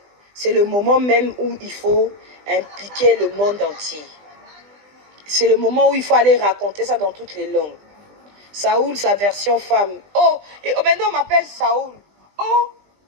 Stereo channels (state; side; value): late; left; 20 ms